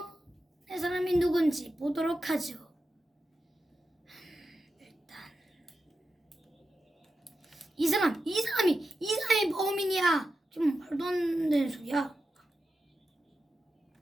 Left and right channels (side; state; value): both; normal; correlation 0.90